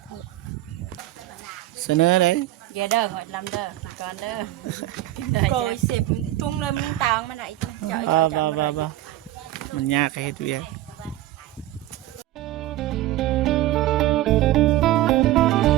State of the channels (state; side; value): quieter; left; 15.1 dB